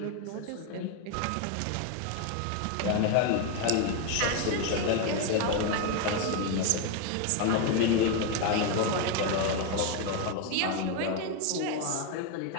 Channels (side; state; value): both; different; correlation 0.02